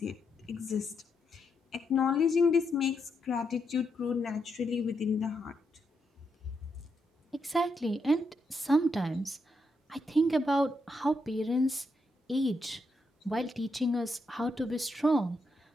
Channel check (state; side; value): normal; both; correlation 0.81